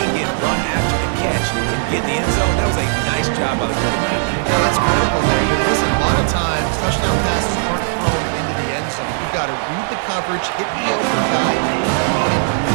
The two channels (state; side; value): silent; left; 68 dB below the other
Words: get run after the catch and get in the end zone. That was a nice job by the quarterback. Yeah, that's critical there. Listen, a lot of times, touchdown passes aren't thrown into the end zone. You've got to read the coverage, hit the open guy,